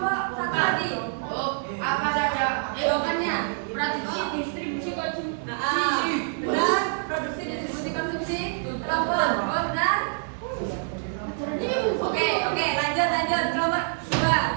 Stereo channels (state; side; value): silent; left; digital silence